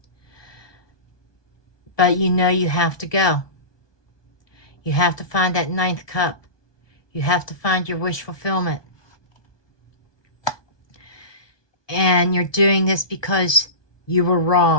But you know you have to go. You have to find that ninth cup. You have to find your wish fulfillment. And you're doing this because you were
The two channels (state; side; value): late; right; 1.2 ms